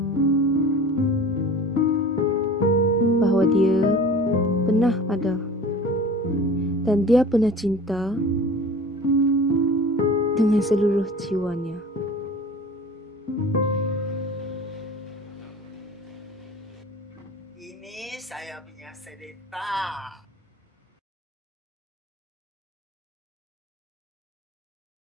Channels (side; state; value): both; normal; correlation 0.40